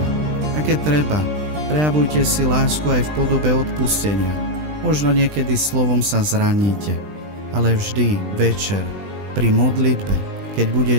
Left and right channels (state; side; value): late; left; 20 ms